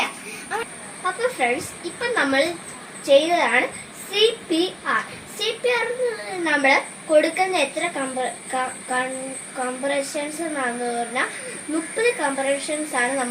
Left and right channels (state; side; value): identical; both; correlation 1.00